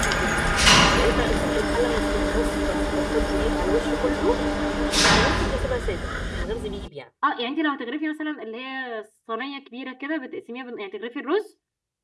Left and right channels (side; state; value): both; identical; correlation 1.00